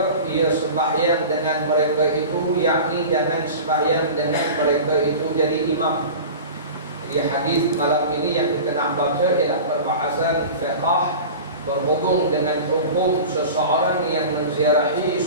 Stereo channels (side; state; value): both; inverted; correlation -0.34